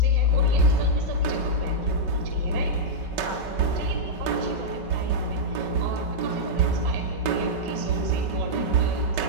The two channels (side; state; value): left; late; 5.3 ms